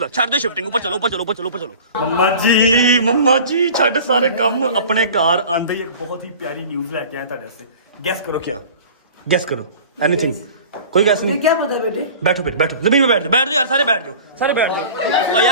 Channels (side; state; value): both; inverted; correlation -0.42